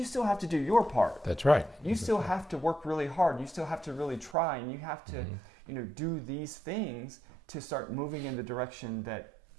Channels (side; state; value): left; drops out; at 4.4 s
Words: still have to do your part. That's right. You still have to work really hard. You still have to really try, and you have to, do these things to start moving in the direction that